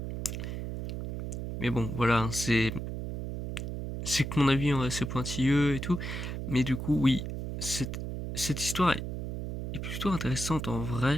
Mais bon, voilà, c'est que mon avis est assez pointilleux et tout, mais du coup, oui, cette histoire est plutôt intéressante en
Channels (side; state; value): right; noise; hum, 5 dB below the sound